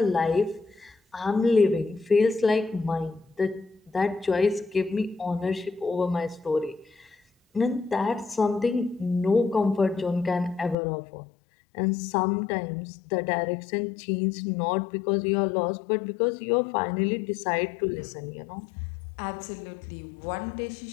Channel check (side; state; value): right; drops out; at 10.8 s